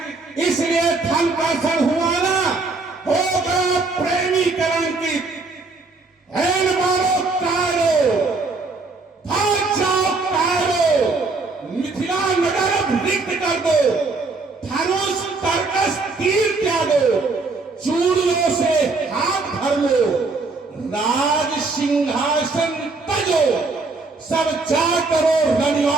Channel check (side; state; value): left; quieter; 3.8 dB